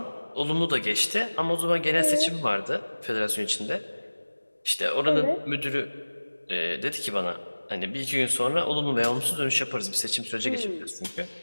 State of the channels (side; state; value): both; inverted; correlation -1.00